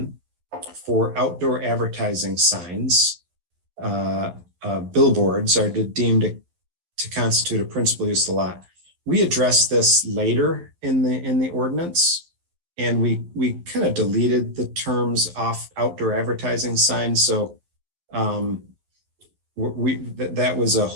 for outdoor advertising signs. Billboards are deemed to constitute a principal use of the lot. We addressed this later in the ordinance, and we kind of deleted the terms off outdoor advertising signs. So that was a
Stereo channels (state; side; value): late; left; 11 ms